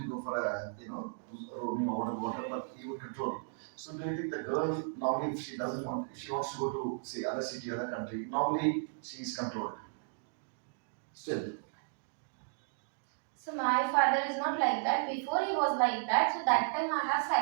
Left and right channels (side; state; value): left; silent; digital silence